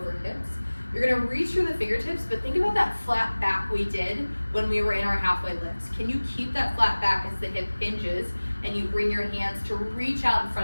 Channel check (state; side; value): inverted; both; correlation -1.00